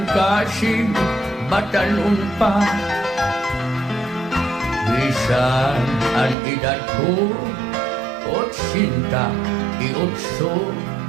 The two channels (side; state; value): left; drops out; at 6.4 s